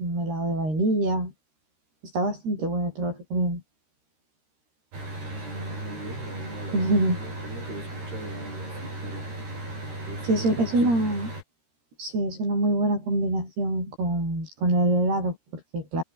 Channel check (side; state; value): left; late; 13 ms